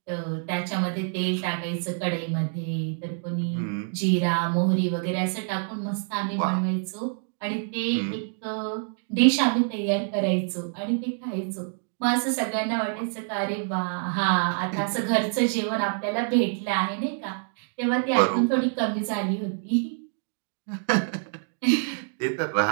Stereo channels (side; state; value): left; silent; 60 dB below the other